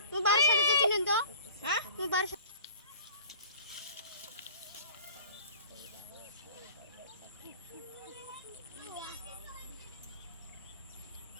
তুমি বাড়ির সাথে চিনেন তো হ্যাঁ তুমি বাড়ির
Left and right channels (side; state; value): both; inverted; correlation -0.46